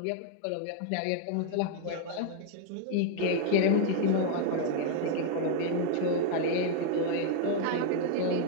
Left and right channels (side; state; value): both; different; correlation 0.00